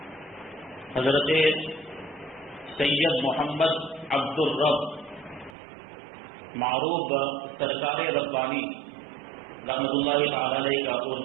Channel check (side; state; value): left; drops out; at 5.6 s